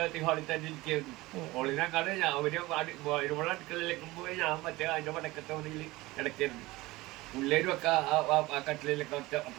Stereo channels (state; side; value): quieter; left; 20.1 dB